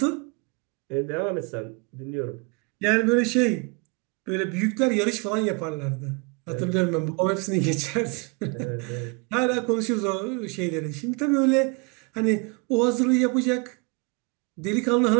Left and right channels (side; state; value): left; quieter; 31.0 dB